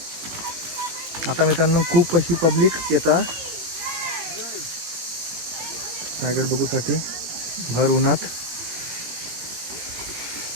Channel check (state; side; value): late; left; 18 ms